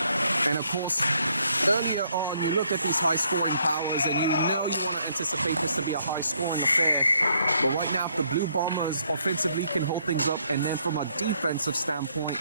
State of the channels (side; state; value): both; inverted; correlation -0.70